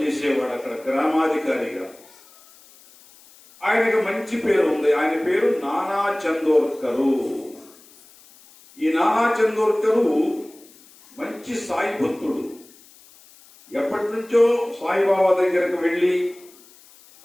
చేసేవాడు అక్కడ గ్రామాధికారిగా. ఆయనకు మంచి పేరు ఉంది. ఆయన పేరు నానా చందోర్కరు. ఈ నానా చందోర్కరు మంచి సాయి భక్తుడు. ఎప్పటి నుంచో సాయిబాబా దగ్గరకు వెళ్ళి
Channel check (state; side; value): noise; left; hiss, 25 dB below the sound